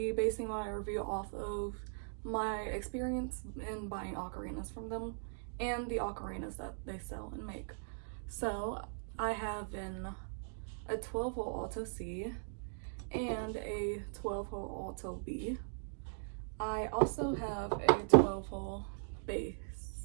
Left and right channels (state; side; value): silent; left; digital silence